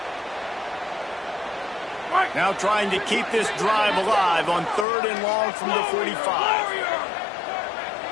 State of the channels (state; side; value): drops out; right; at 4.9 s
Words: Now trying to keep this drive alive on 3rd and long from the 45.